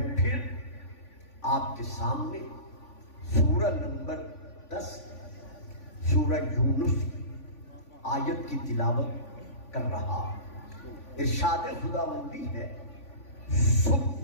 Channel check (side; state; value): right; late; 3.5 ms